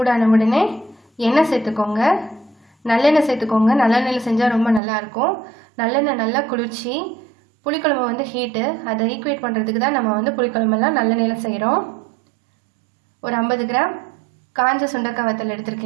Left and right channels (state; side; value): drops out; left; at 4.8 s